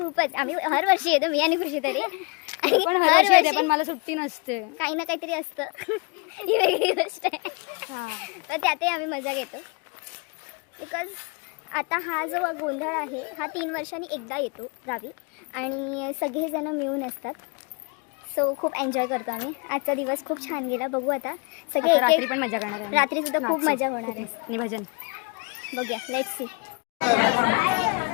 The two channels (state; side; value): quieter; right; 31.7 dB